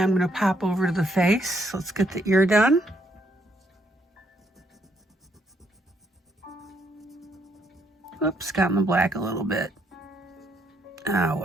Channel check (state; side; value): normal; both; correlation 0.72